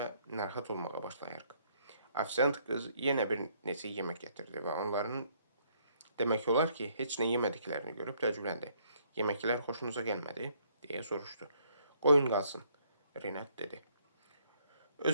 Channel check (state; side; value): inverted; both; correlation -0.67